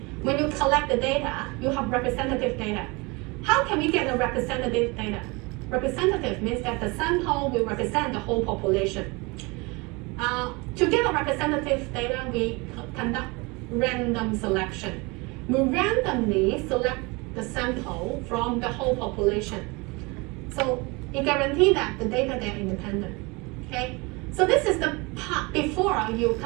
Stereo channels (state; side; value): quieter; left; 26.6 dB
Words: when you collect the data, you have representative data. How can we get the representative data? Representative means that the sample will represent the whole population. To get a representative data, we conduct random selection. We randomly select the sample from the whole population. So it guarantees that the data they are independent. Okay? So this is the part before you